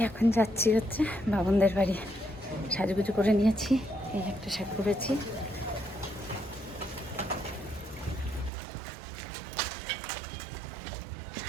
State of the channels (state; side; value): drops out; left; at 8.5 s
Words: এখন যাচ্ছি হচ্ছে বাবনদের বাড়ি। সাজুগুজু করে নিয়েছি, এই একটা শাড়ি পরেছি।